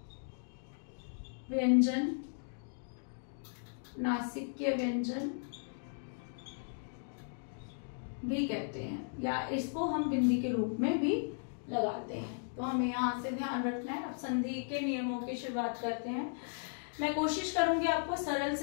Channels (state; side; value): silent; right; digital silence